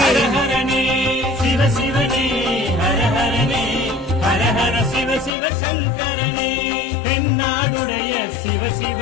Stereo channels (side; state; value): right; drops out; at 5.3 s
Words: ஹரஹரனே சிவசிவனே, ஹரஹரனே, ஹரஹர சிவ சிவ சங்கரனே, தென்னாடுடைய